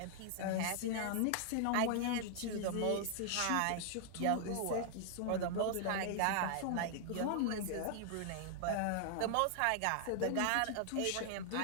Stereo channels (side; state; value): both; different; correlation 0.00